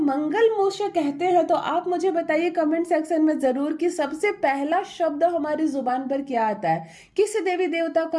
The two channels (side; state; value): both; identical; correlation 1.00